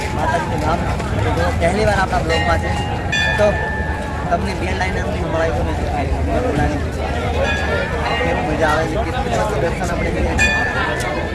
માતાજીનું નામ પહેલી વાર આપણા બ્લોગમાં છે. તો તમને બે લાઈન સંભળાય તો કેવું મજા આવે છે, કેટલું મસ્ત દર્શન આપણે કરીએ છીએ.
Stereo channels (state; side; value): identical; both; correlation 1.00